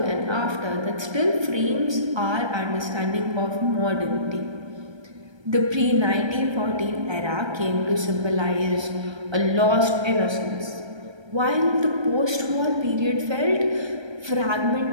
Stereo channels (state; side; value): late; left; 1.3 ms